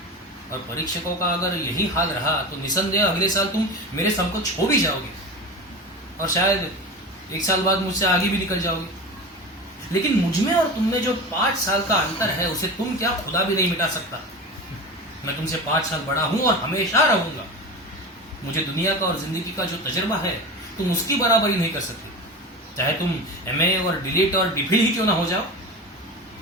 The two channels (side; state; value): both; normal; correlation 0.29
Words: और परीक्षकों का अगर यही हाल रहा तो निसंदेह अगले साल तुम मेरे समकक्ष हो भी जाओगे, और शायद 1 साल बाद मुझसे आगे भी निकल जाओगे। लेकिन मुझमें और तुममें जो 5 साल का अंतर है, उसे तुम क्या खुदा भी नहीं मिटा सकता। मैं तुमसे 5 साल बड़ा हूं और हमेशा रहूंगा। मुझे दुनिया का और जिंदगी का जो तजुर्बा है, तुम उसकी बराबरी नहीं कर सकते, चाहे तुम MA और डिलीट और डिफिल ही क्यों ना हो जाओ।